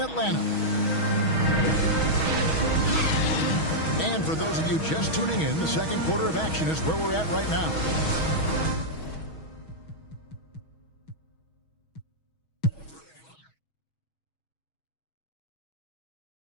Atlanta. And for those of you just tuning in, the second quarter of action is where we're at right now.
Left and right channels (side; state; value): right; late; 6.3 ms